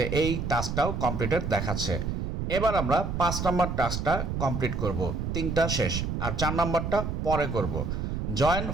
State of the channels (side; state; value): right; noise; rumble, 2 dB below the sound